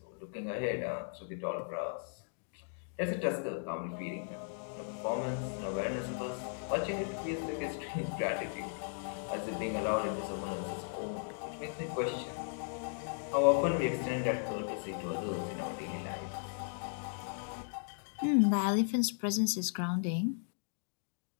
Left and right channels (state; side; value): silent; right; digital silence